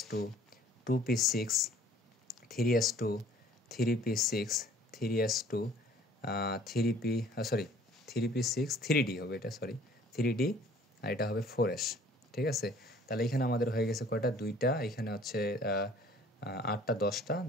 2p6 3s2 3p6 3s2 3p 3p6 3d হবে, এটা 3d, আর এটা হবে 4s। ঠিক আছে, তাহলে এখানে আমাদের হয়ে গেছে কয়টা? 2টা, এখানে হচ্ছে 8টা 10টা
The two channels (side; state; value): both; normal; correlation 0.54